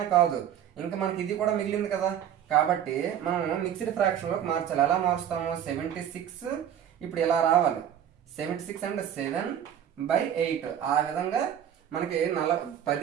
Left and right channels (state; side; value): quieter; left; 9.8 dB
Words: కాదు, ఇంకా మనకి ఇది కూడా మిగిలింది కదా. కాబట్టి మనం మిక్స్డ్ ఫ్రాక్షన్ లోకి మార్చాలి. ఎలా మారుస్తాము, 76 ఇప్పుడు ఇలా రావాలి. 76 అంటే 7/8. ఆ విధంగా మనకి